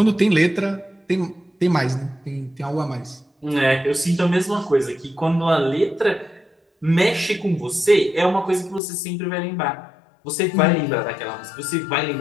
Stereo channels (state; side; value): drops out; right; at 8.8 s